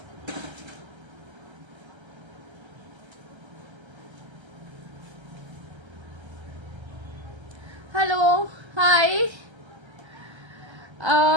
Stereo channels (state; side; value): late; left; 1.3 ms